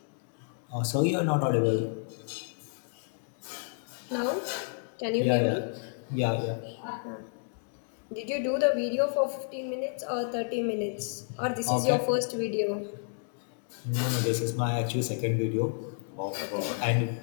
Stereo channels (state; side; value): silent; right; digital silence